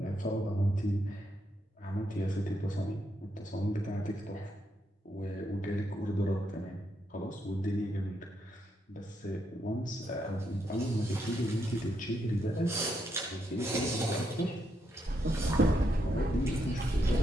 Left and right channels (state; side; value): normal; both; correlation 0.80